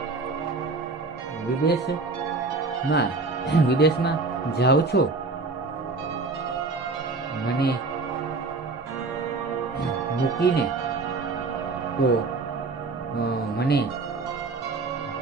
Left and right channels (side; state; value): left; quieter; 3.8 dB